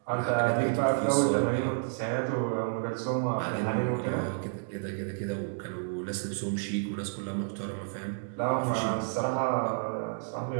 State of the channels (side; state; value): left; silent; digital silence